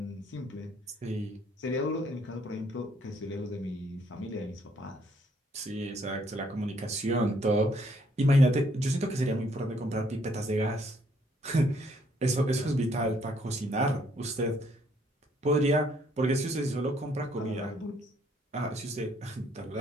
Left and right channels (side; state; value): both; normal; correlation 0.67